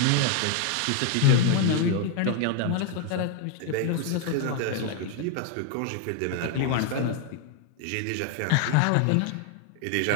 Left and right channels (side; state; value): both; different; correlation 0.00